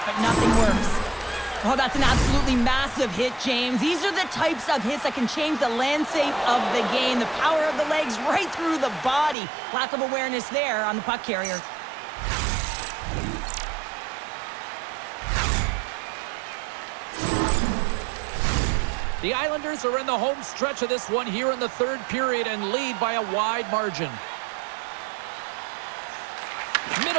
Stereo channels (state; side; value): drops out; left; at 9.3 s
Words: but nothing works. Oh, that's an absolutely massive hit, James. These are the types of hits that can change the landscape of the game. The power of the legs right through the body. Lack of awareness there on the puck carrier. The Islanders are in the home stretch of this one here in the third period and lead by a wide margin.